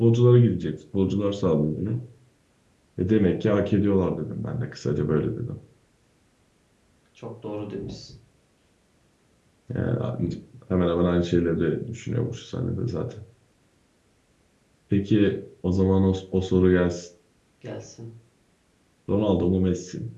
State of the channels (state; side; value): identical; both; correlation 1.00